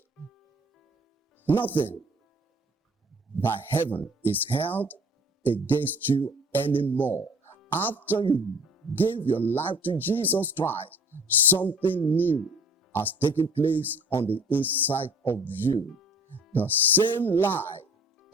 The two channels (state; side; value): normal; both; correlation 0.51